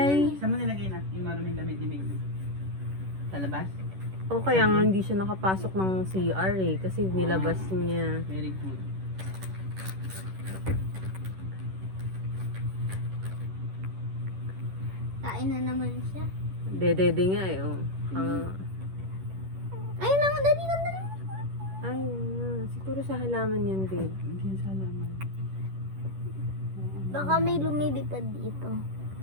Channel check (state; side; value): late; left; 11 ms